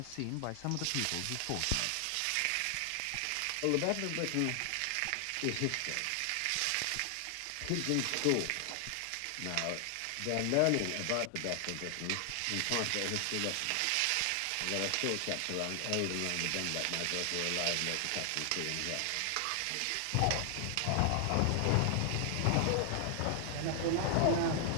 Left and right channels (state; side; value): different; both; correlation 0.00